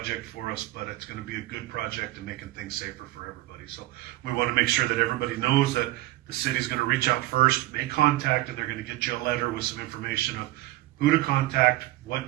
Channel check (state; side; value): quieter; left; 17.2 dB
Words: for us, but it's going to be a good project and making things safer for everybody. So we want to make sure that everybody knows that the city's going to reach out first, make contact, and they're going to get you a letter with some information of who to contact, what